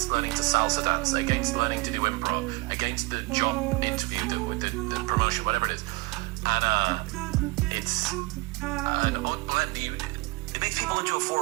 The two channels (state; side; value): quieter; left; 25.0 dB